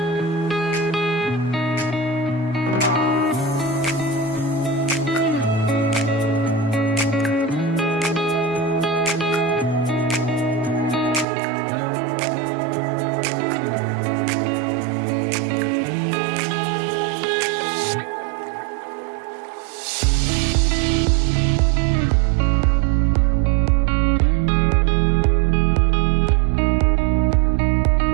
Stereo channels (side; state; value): left; drops out; at 11.2 s